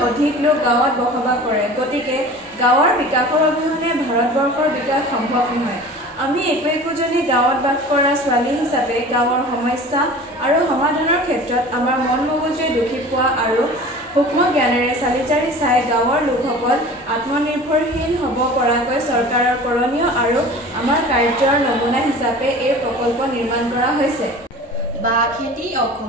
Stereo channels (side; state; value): both; normal; correlation 0.40